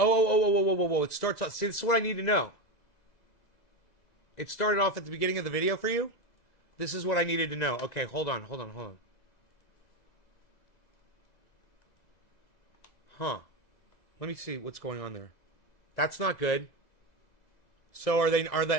It starts off. See, this is what I need to know. It started off at the beginning of the video for you? This is what I needed to know. Okay, hold on. Huh. Let me see what's going on there. That's not good. So are they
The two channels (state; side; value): late; right; 2.0 ms